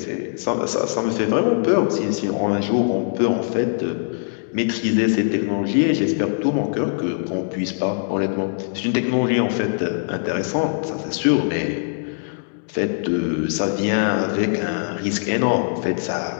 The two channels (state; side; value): silent; right; digital silence